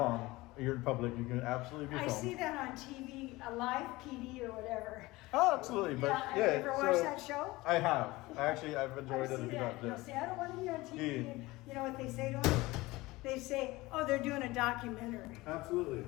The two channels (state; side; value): quieter; right; 20.4 dB